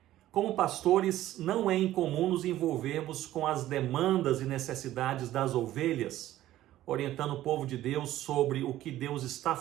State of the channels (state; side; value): quieter; left; 14.1 dB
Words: Como pastores, não é incomum nos envolvermos com as demandas e necessidades das ovelhas, orientando o povo de Deus sobre o que Deus está